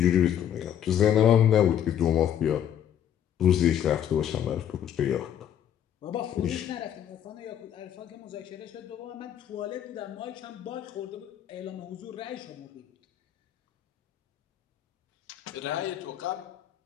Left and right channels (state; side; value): quieter; right; 10.0 dB